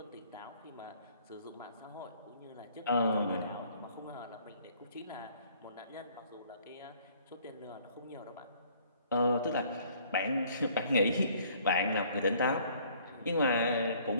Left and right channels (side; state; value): both; inverted; correlation -0.58